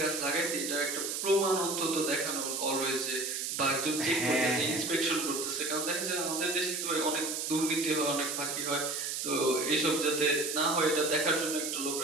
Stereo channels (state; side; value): noise; right; hiss, 2 dB below the sound